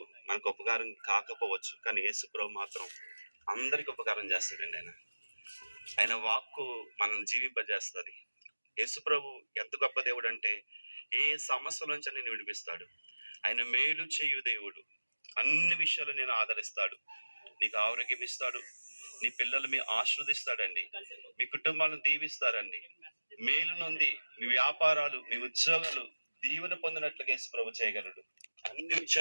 మనకు ఉపకారం కాకపోవచ్చు, కానీ యేసు ప్రభు మాత్రం అందరికి ఉపకారం చేస్తాడండి. ఆయన వాక్కు మనల్ని జీవింపజేస్తుంది. యేసు ప్రభు ఎంత గొప్ప దేవుడు అంటే ఏ సమస్య నుంచి నేను విడిపిస్తాడు. ఆయన మేలు చేయు దేవుడు. అన్ని విషయాలు నేను ఆదరిస్తాడు. నీకు ఆరోగ్యం ఇస్తాడు, నీ పిల్లలు మీ ఆశీర్వదిస్తాడండి, మీ కుటుంబాలను దీవిస్తారండి. మేలు నొంది మీ వ్యాపారాలు, మీ ఉద్యోగాలు దీవెన పొందినట్లుగా యేసు ప్రభు చేయగలడు. అన్ని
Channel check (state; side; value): inverted; both; correlation -1.00